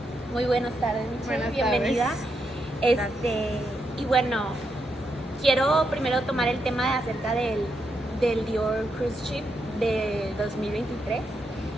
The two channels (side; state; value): both; normal; correlation 0.81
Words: Muy buenas tardes, Michelle. Buenas Bienvenida. Y bueno, quiero primero tomar el tema acerca del Dior Cruise Ship de 2023,